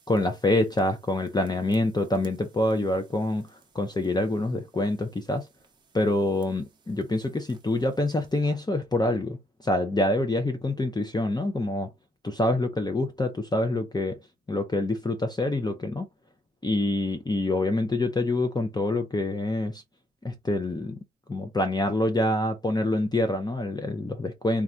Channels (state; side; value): normal; both; correlation 0.73